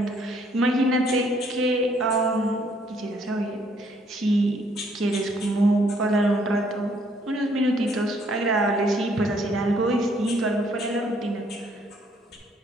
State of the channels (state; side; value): normal; both; correlation 0.66